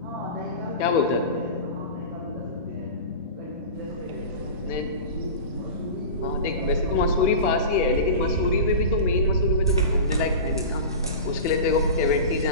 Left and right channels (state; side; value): inverted; both; correlation -0.30